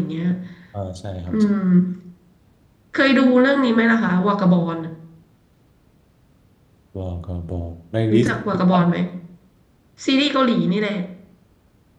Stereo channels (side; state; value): both; identical; correlation 1.00